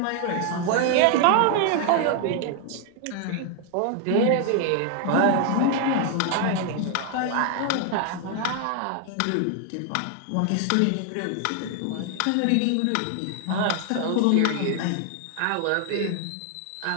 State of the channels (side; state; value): both; different; correlation 0.00